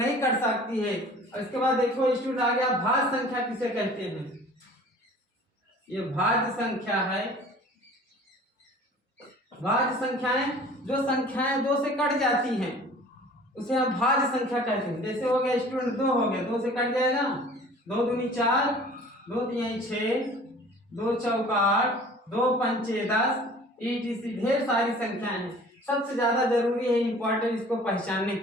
कट सकती है। और इसके बाद देखो स्टूडेंट आ गया भाज्य संख्या किसे कहते हैं। ये भाज्य संख्या है। भाज्य संख्याएं जो संख्याएं 2 से कट जाती हैं उसे हम भाज्य संख्या कहते हैं। जैसे हो गया स्टूडेंट 2 हो गया, 2 से कट जाएगा, 2 दूनी 4, 2 तिहाई 6, 2 चौका 8, 2 पंचे 10 etc ढेर सारी संख्याएं हैं। सबसे ज्यादा जरूरी है इंपॉर्टेंट इसको पहचानने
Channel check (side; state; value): both; normal; correlation 0.47